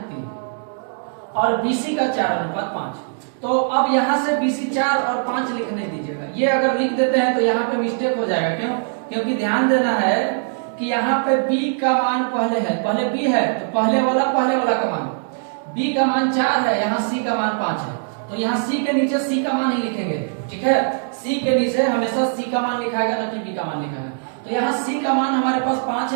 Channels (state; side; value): silent; left; digital silence